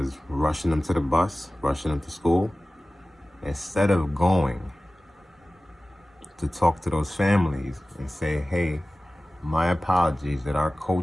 rushing them to the bus, rushing them to school. Instead of going to talk to those families and say, hey, my apologies that our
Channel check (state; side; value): normal; both; correlation 0.97